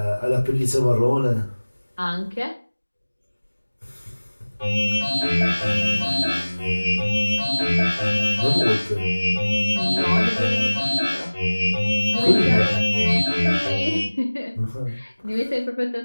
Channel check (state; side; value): inverted; both; correlation -1.00